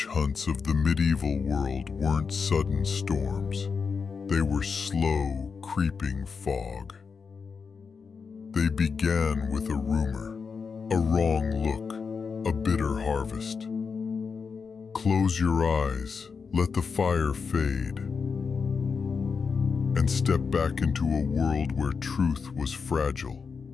hunts of the medieval world weren't sudden storms. They were slow, creeping fog. They began with a rumor, a wrong look, a bitter harvest. Close your eyes, let the fire fade, and step back into a world where truth was fragile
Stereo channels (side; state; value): right; quieter; 5.5 dB